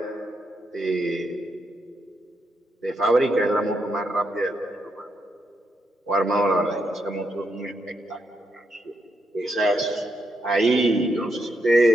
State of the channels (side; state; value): both; normal; correlation 0.80